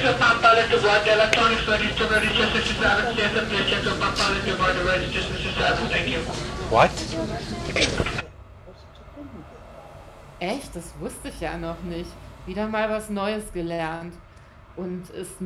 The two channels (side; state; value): both; identical; correlation 1.00